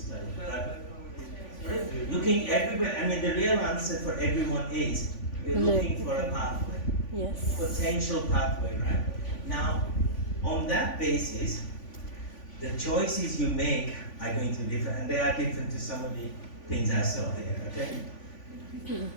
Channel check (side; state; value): right; late; 3.5 ms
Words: Looking everywhere, I mean, the real answer for everyone is we're looking for a pathway. Yes. Potential pathway, right? Now, on that basis, the choices you make are going to be different, and they are different to some of the things I saw here, okay?